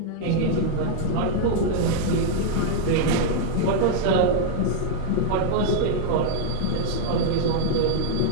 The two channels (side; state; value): both; different; correlation 0.00